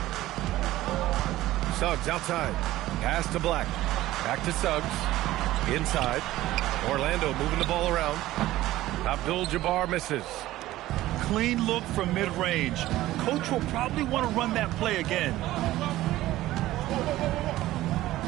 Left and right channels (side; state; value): left; quieter; 15.8 dB